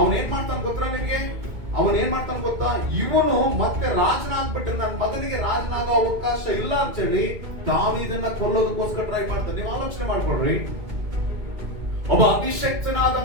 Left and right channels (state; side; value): late; left; 2.2 ms